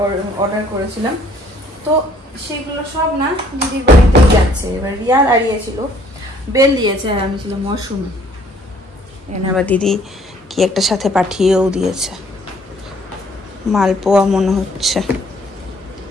অর্ডার করেছিলাম, তো সেগুলো সব না দিদির বাড়িতেই যাচ্ছে। এবার রিয়া দাঁড়িয়েছিল, বেল দিয়েছে, আর আমি ছিলাম মশরুমে। এখানে আবার দিদি কি একটা সাথে পাঠিয়েও দিয়েছে, মালপোয়া মনে হচ্ছে,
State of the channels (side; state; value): both; normal; correlation 0.61